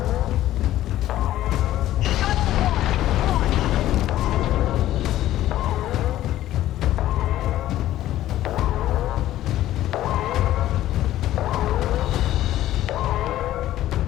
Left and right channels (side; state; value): right; quieter; 13.8 dB